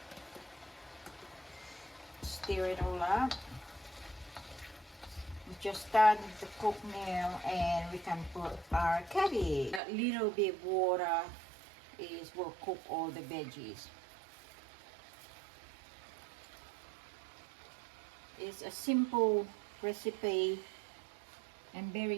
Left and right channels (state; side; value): drops out; left; at 9.8 s